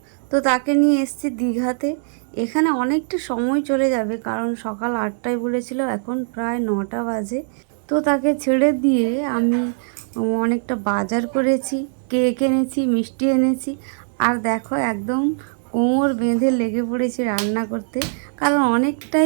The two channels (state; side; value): silent; left; digital silence